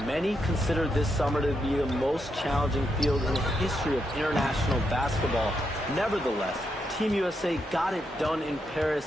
Many consider this summer to be the most challenging field in the history of international basketball. Nevertheless, Team USA got it done in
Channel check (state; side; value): normal; both; correlation 0.82